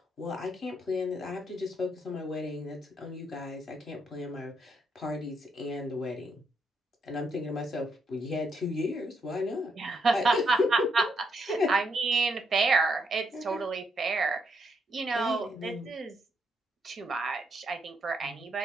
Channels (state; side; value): normal; both; correlation 0.77